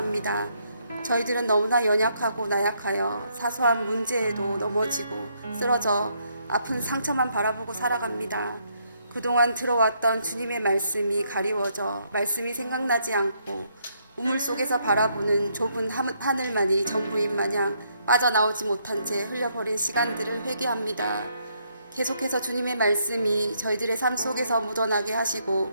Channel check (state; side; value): inverted; both; correlation -0.73